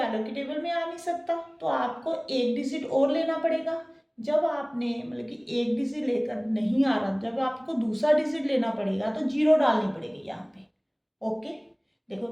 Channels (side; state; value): both; identical; correlation 1.00